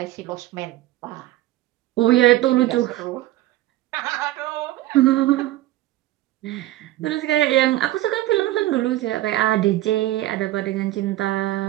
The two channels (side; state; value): left; quieter; 15.8 dB